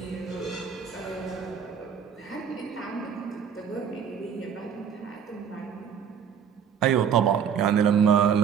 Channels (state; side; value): quieter; left; 7.6 dB